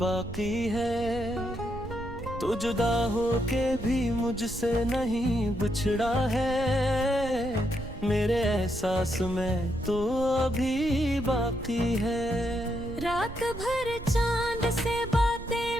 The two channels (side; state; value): right; noise; rumble, 11 dB below the sound